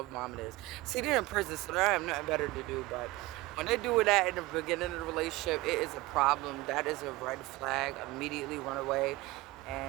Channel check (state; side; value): quieter; left; 19.9 dB